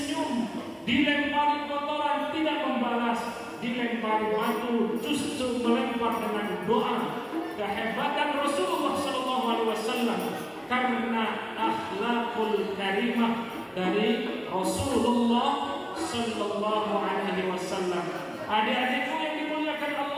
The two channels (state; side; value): identical; both; correlation 1.00